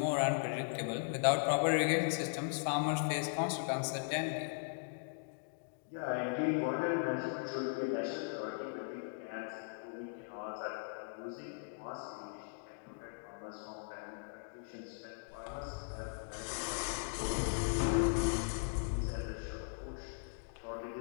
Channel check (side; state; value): right; silent; digital silence